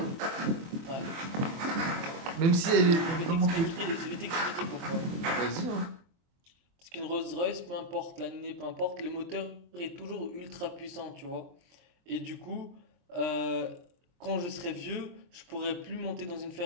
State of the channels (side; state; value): left; late; 23 ms